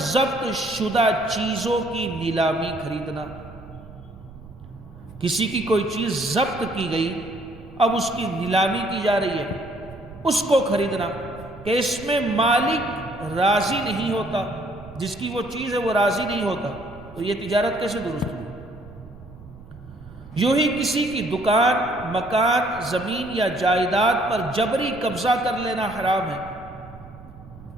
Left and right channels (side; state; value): right; noise; rumble, 19 dB below the sound